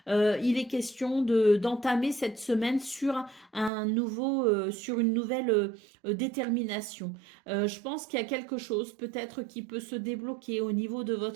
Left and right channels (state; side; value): drops out; left; at 3.7 s